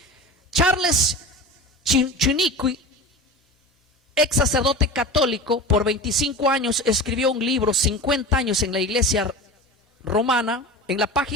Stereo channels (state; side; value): normal; both; correlation 0.31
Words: Charles Chiniquy ex sacerdote católico, por 25 años escribió un libro, 50 años en la iglesia romana. En la